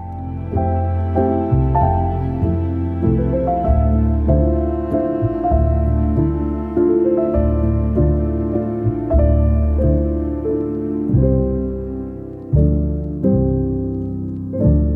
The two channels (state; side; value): identical; both; correlation 1.00